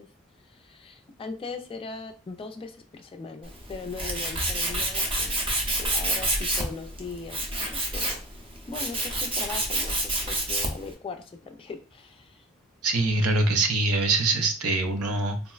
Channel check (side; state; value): both; normal; correlation 0.35